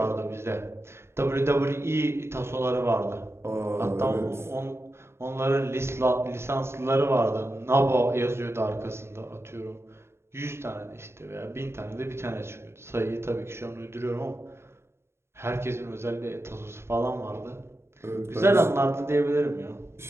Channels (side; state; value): left; late; 0.12 ms